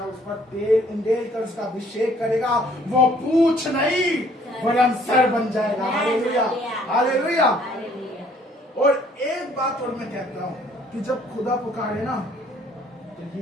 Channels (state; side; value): normal; both; correlation 0.61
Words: उस पर तेल उंडेल कर उसका अभिषेक करेगा, वो पूछ नहीं वरन सर बन जाएगा। हालेलुया। हालेलुया। और एक बात और मैं कहता हूँ कि जब खुदा पुकारे ना तो